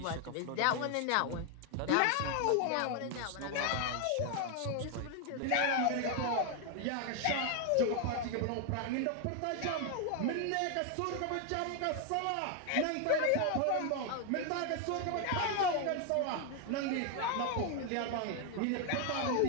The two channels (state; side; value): different; both; correlation 0.01